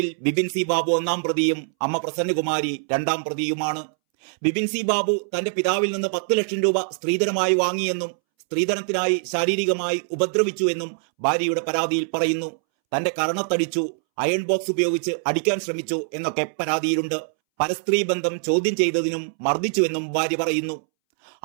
ബിബിൻ സി ബാബു 1-ാം പ്രതിയും അമ്മ പ്രസന്നകുമാരി 2-ാം പ്രതിയുമാണ്. ബിബിൻ സി ബാബു തന്റെ പിതാവിൽ നിന്ന് 10 ലക്ഷം രൂപ സ്ത്രീധനമായി വാങ്ങിയെന്നും സ്ത്രീധനത്തിനായി ശാരീരികമായി ഉപദ്രവിച്ചു എന്നും ഭാര്യയുടെ പരാതിയിൽ പറയുന്നു. തന്റെ കരണത്തടിച്ചു, അയൺ ബോക്സ് ഉപയോഗിച്ച് അടിക്കാൻ ശ്രമിച്ചു എന്നൊക്കെ പരാതിയിലുണ്ട്. പരസ്ത്രീ ബന്ധം ചോദ്യം ചെയ്തതിനും മർദ്ദിച്ചുവെന്നും ഭാര്യ പറയുന്നു.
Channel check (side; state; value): left; silent; 63 dB below the other